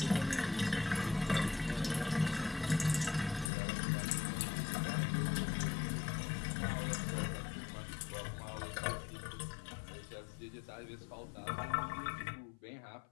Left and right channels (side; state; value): right; drops out; at 3.5 s